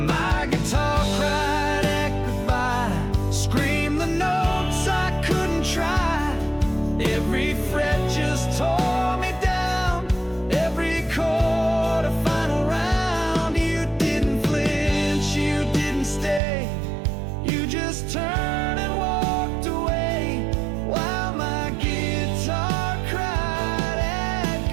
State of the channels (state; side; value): drops out; left; at 16.4 s